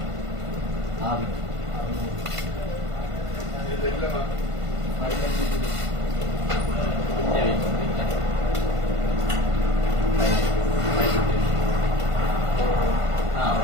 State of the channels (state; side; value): late; left; 1.5 ms